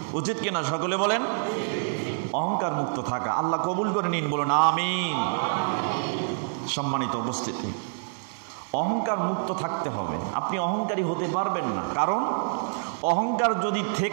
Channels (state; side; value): silent; left; digital silence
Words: উচিত কিনা সকলে বলেন? অহংকার মুক্ত থাকা আল্লাহ কবুল করে নিন, বলুন আমিন। সম্মানিত উপস্থিতি, অহংকার মুক্ত থাকতে হবে। আপনি অহংকারী হতে পারবেন না, কারণ অহংকার যদি